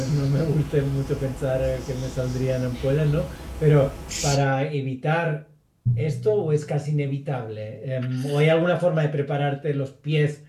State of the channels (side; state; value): both; identical; correlation 1.00